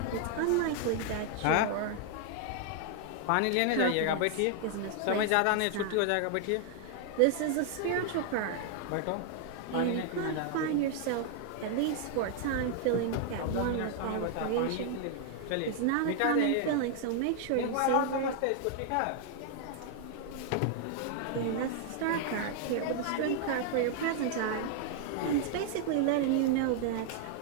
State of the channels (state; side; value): different; both; correlation 0.00